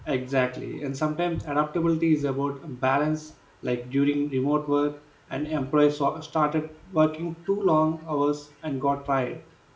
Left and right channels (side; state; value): both; identical; correlation 1.00